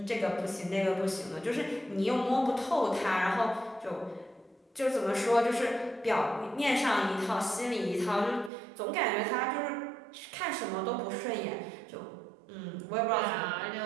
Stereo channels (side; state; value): left; drops out; at 8.5 s